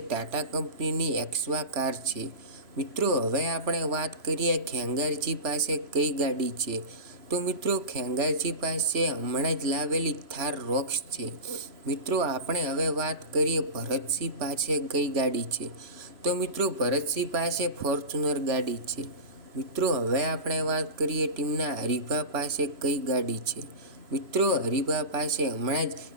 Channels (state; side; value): late; left; 3.0 ms